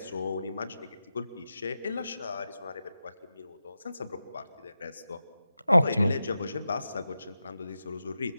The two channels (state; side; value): inverted; both; correlation -0.92